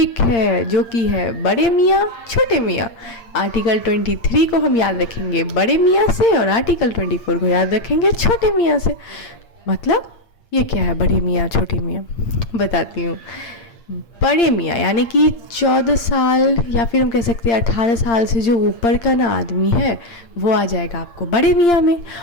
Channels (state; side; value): late; right; 8.7 ms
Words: है, जो कि है बड़े मियाँ छोटे मियाँ। आर्टिकल 23 को हम याद रखेंगे बड़े मियाँ से और आर्टिकल 24 को याद रखेंगे छोटे मियाँ से। मतलब ये क्या है बड़े मियाँ छोटे मियाँ, बताती हूँ। बड़े मियाँ यानी कि 14 साल या फिर हम कह सकते हैं 18 साल से जो ऊपर का ना आदमी है, वो आ जाएगा आपको बड़े मियाँ में,